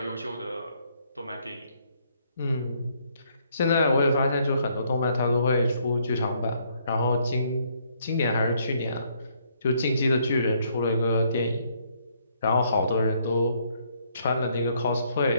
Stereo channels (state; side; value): inverted; both; correlation -0.69